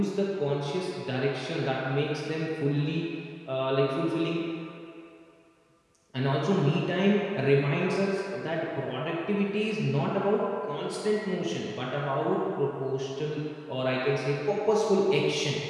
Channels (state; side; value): identical; both; correlation 1.00